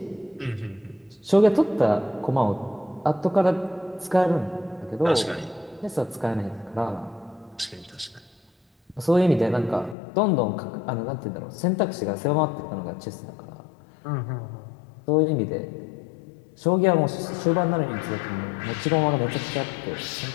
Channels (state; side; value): drops out; right; at 10.0 s